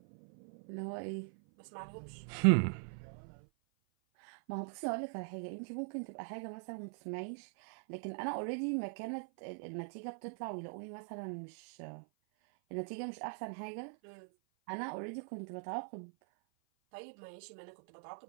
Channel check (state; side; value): silent; left; 50 dB below the other